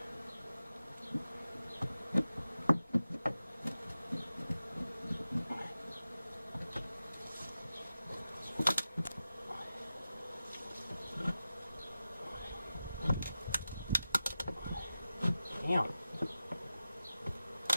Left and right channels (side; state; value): both; inverted; correlation -0.93